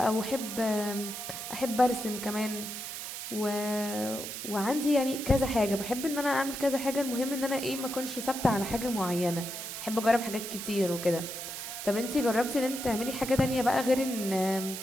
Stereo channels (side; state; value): right; noise; hiss, 7 dB below the sound